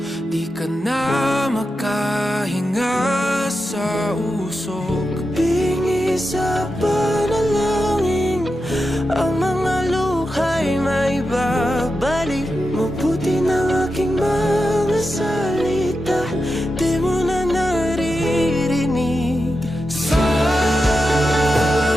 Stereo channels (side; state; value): both; normal; correlation 0.89